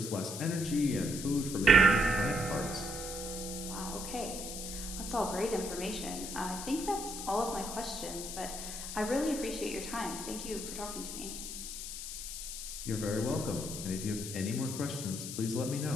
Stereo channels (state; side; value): noise; left; hiss, 7 dB below the sound